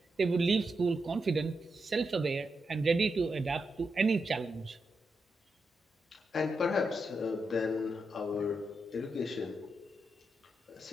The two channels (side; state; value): both; normal; correlation 0.85